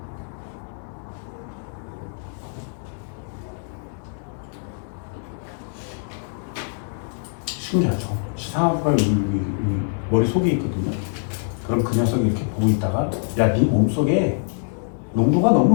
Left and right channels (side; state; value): right; silent; 63 dB below the other